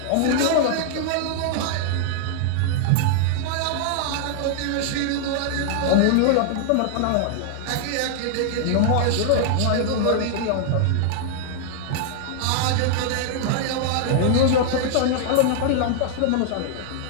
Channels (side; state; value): both; different; correlation -0.01